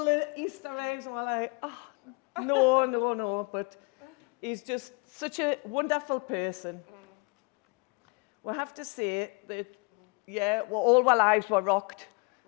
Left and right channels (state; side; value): quieter; right; 31.4 dB